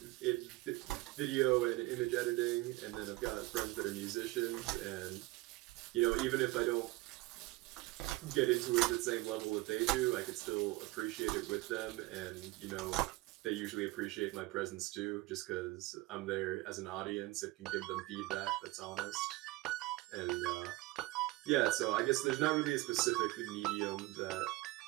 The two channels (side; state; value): left; quieter; 20.6 dB